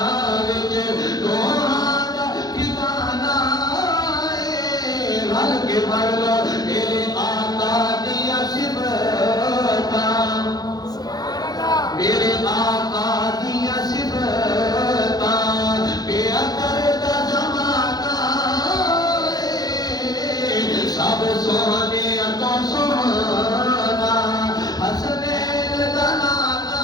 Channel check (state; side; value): late; right; 0.19 ms